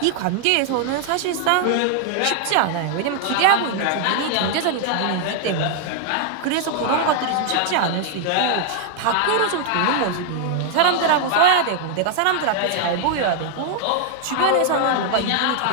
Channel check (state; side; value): different; both; correlation 0.00